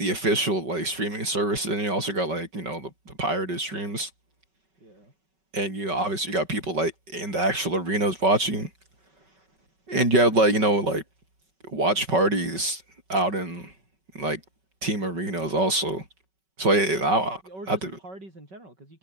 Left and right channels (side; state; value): left; late; 5.3 ms